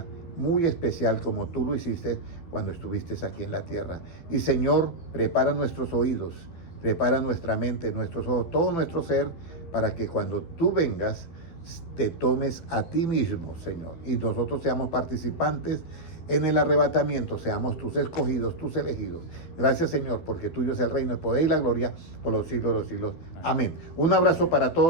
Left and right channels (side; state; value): right; late; 12 ms